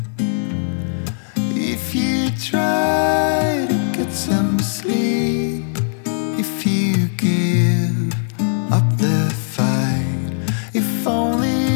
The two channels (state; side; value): silent; right; 66 dB below the other